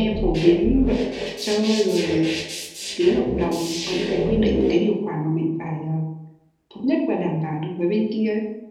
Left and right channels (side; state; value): both; identical; correlation 1.00